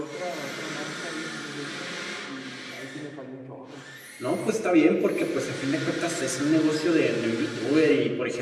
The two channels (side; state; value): both; identical; correlation 1.00